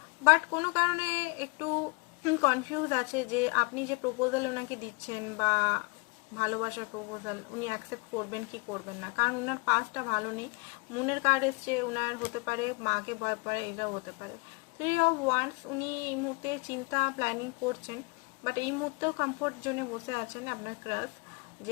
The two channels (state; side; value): quieter; right; 28.9 dB